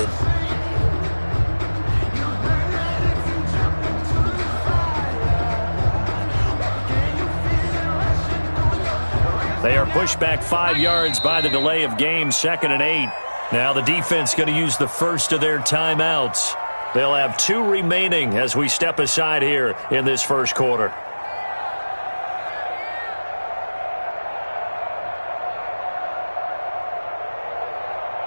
They are pushed back 5 yards by the delay of game, 2nd and 8. Now the defense going to use the first of their timeouts. They'll have 2 remaining as we step aside here in this first quarter.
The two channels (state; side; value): inverted; both; correlation -1.00